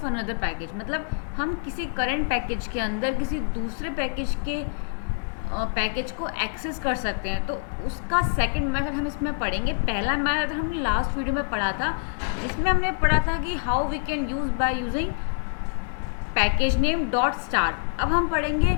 another package. मतलब हम किसी current package के अंदर किसी दूसरे package के package को access कर सकते हैं, तो उसका सेकंड मेथड हम इसमें पढ़ेंगे। पहला मेथड हमने लास्ट वीडियो में पढ़ा था, जिसमें हमने पढ़ा था कि how we can use by using package name dot star. अब हम पढ़ेंगे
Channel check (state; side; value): silent; right; digital silence